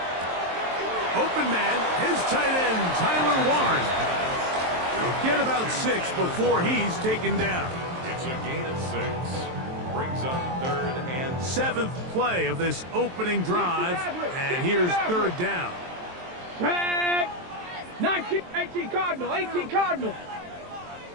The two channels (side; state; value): left; late; 23 ms